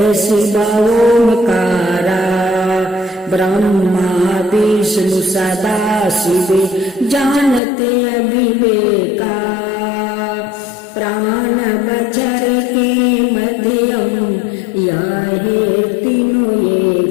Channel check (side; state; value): right; drops out; at 7.6 s